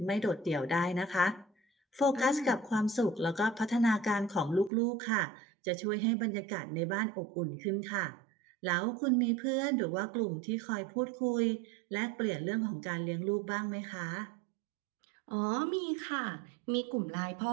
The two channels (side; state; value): left; drops out; at 4.7 s